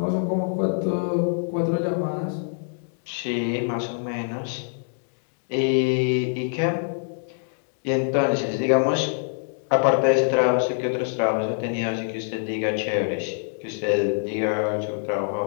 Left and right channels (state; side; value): silent; right; digital silence